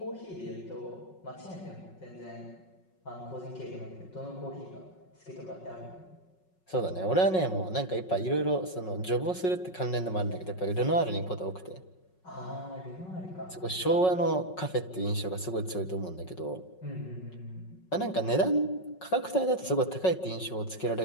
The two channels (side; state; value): right; late; 5.4 ms